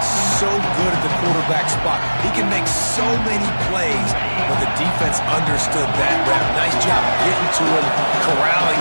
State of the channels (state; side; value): inverted; both; correlation -1.00